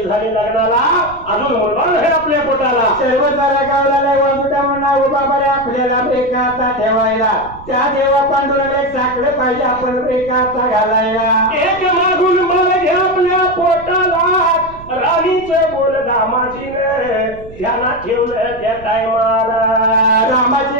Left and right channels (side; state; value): right; noise; rumble, 18 dB below the sound